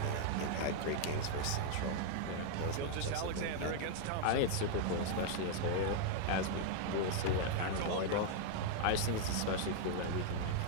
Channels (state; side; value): different; both; correlation 0.00